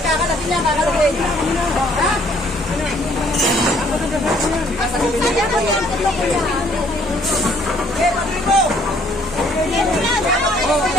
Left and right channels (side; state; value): both; normal; correlation 0.62